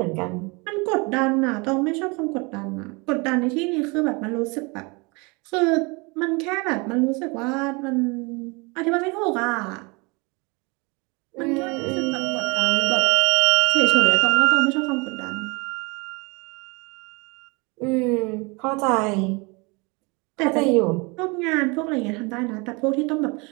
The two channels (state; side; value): quieter; left; 28.3 dB